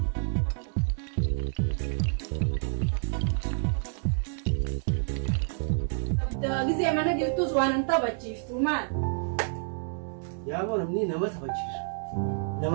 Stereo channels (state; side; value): silent; left; digital silence